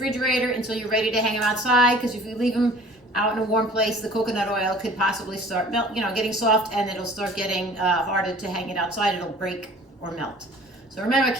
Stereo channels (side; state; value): both; normal; correlation 0.48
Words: until you're ready to hang them outside, because if you leave them out in a warm place, the coconut oil could possibly start getting soft, and it'll start getting harder to hang it outside. It'll break or melt. So remember,